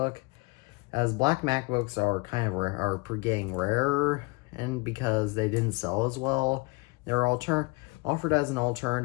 as black MacBooks are getting rarer, and because they didn't sell as well, they're offered as an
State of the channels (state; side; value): quieter; right; 26.3 dB